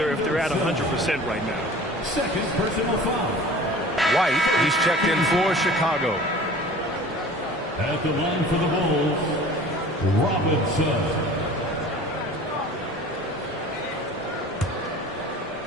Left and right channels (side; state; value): both; normal; correlation 0.43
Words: if they're at 100% right now. Second personal foul. White, he's checked in for Chicago. At the line for the Bulls, Robinson.